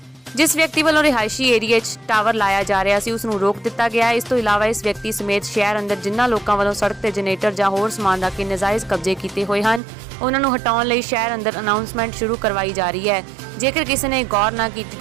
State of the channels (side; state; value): left; drops out; at 9.8 s